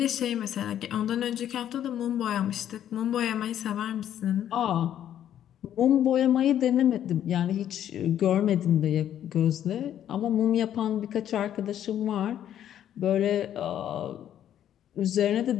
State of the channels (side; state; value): right; quieter; 10.7 dB